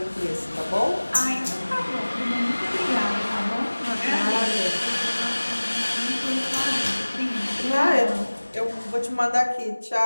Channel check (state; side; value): inverted; both; correlation -1.00